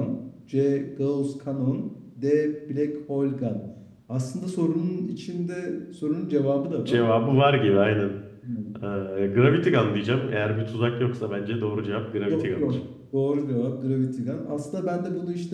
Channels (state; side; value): identical; both; correlation 1.00